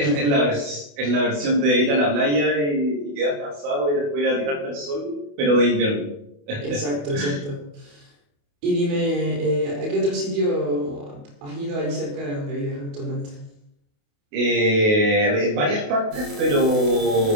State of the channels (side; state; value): left; late; 28 ms